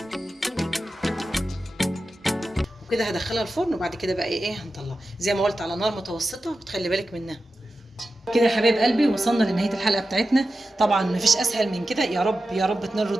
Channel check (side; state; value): both; normal; correlation 0.93